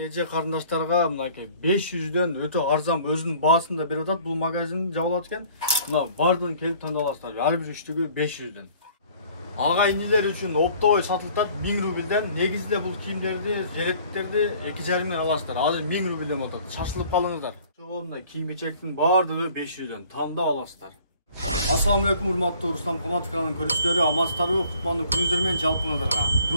карындаштарга мынакей 500дөн өтө арзан өзүнүн баасында берип атат. Бул магазин жабылат экен. Мына бардыгын келип тандап аласыздар. Ар бир үчтүгү 500дөн. Ага инилер үчүн оптовый сатылат 1000 рубльден. Негизде бул кийимдерди, жилеттерди 2,5 аласыздар. Азыр 1000 рубльден болот. Шашылып калыңыздар. Мына кийим-кечектин бардыгы 500дөн тандап аласыздар. Assalamu alaikum, урматтуу Руслан Каматов каналынын көрүүчүлөрү, амансыздарбы? Куттуктуу күнүңүздөр менен жалпыңыздарга.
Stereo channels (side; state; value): both; inverted; correlation -0.54